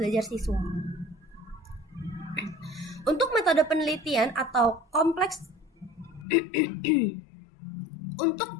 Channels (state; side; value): drops out; right; at 6.2 s